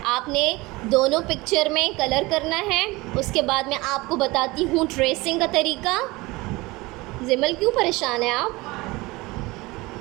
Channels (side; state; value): left; quieter; 22.2 dB